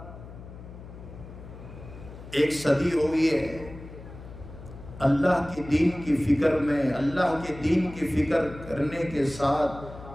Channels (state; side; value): noise; left; hum, 15 dB below the sound